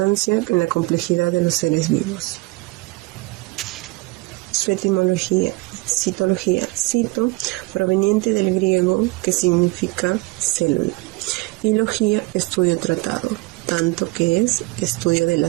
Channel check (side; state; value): left; quieter; 23.4 dB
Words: en la complejidad de los seres vivos. Su etimología: citología, cito, proveniente del griego, que significa célula, y logía, estudio tratado, tanto que es estudio de